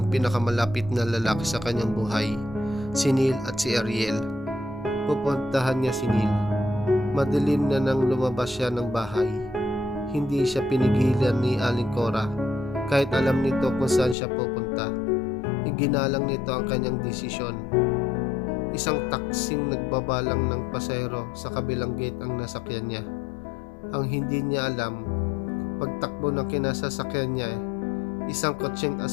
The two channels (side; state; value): right; drops out; at 14.2 s